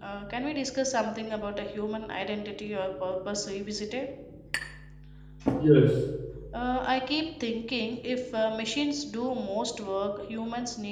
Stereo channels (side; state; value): both; identical; correlation 1.00